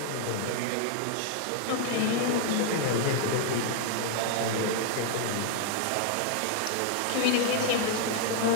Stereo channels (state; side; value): different; both; correlation 0.00